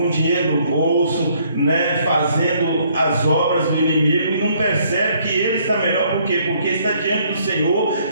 dinheiro no bolso, né, fazendo as obras do inimigo, e não percebe que ele está melhor. Por quê? Porque está diante do Senhor,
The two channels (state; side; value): inverted; both; correlation -0.66